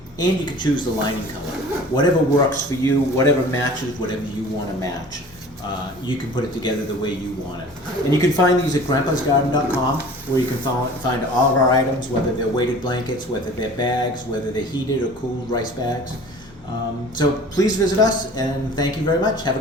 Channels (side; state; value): both; normal; correlation 0.44